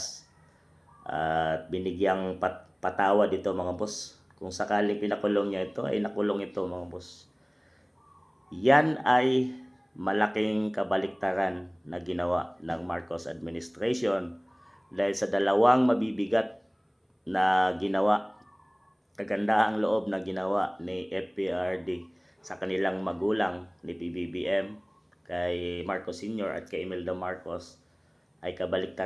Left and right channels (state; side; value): identical; both; correlation 1.00